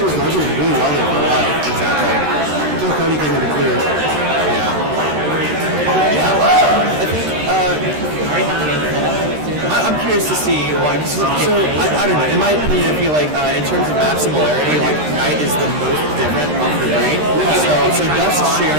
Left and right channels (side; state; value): left; late; 13 ms